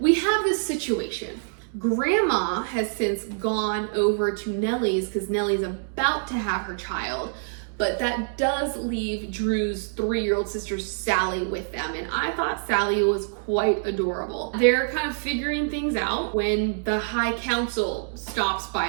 have this situation. Grandma has since gone over to Nellie's because Nellie's about to have her child, but that does leave Drew's 3-year-old sister Sally with them, and I thought Sally was quite adorable. They're kind of figuring things out when the High Council stops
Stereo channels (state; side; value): silent; left; digital silence